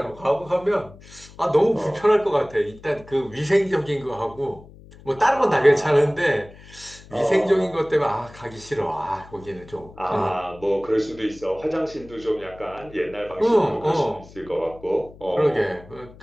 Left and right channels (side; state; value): left; noise; hum, 21 dB below the sound